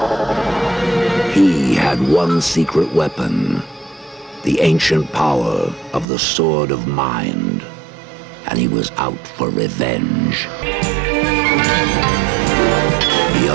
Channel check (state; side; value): drops out; left; at 6.1 s